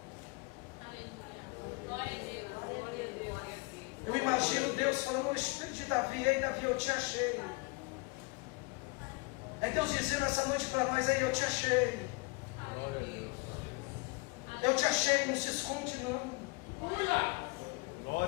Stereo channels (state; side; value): quieter; right; 27.7 dB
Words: Glória a Deus. Eu imagino Deus falando no espírito de Davi, ei Davi, eu te achei. É Deus dizendo essa noite para nós, ei, eu te achei. Eu te achei, não se esconde não.